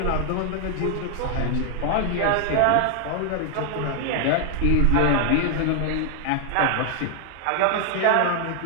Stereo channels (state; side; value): different; both; correlation 0.00